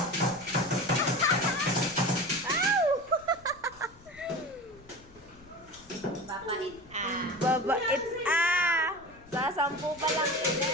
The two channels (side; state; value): left; noise; rumble, 24 dB below the sound